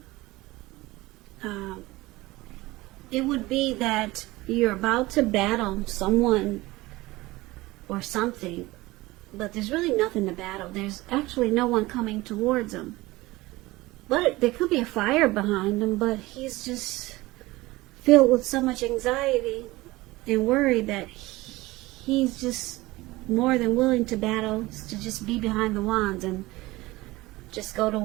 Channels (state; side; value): quieter; left; 19.9 dB